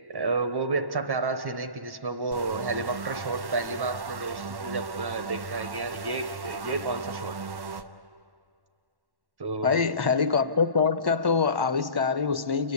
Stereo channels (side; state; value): left; late; 1.1 ms